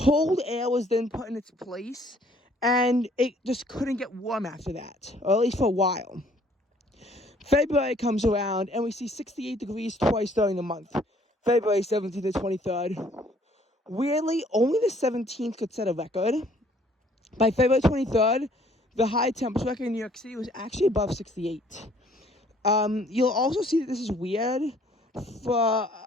air was then put in its place, and it just couldn't get warm after that, or at least for a while. February comes around, and we see 68 degrees twice during the month, February 17th and 23rd. Weirdly, only the 17th could set a record. By February 23rd, the high temperature record in New York City was actually above 68. You'll also see that this is weird for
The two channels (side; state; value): both; normal; correlation 0.60